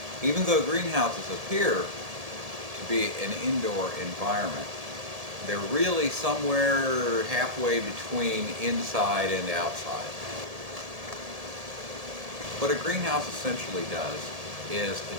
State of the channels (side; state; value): left; late; 1.7 ms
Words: Even though greenhouses appear to be an indoor environment, they're really somewhere halfway between inside and outside. What a greenhouse essentially does is